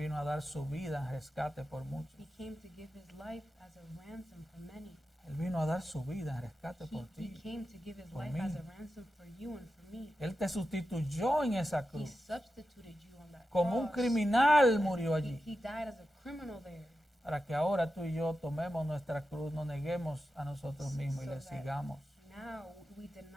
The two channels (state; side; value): normal; both; correlation 0.91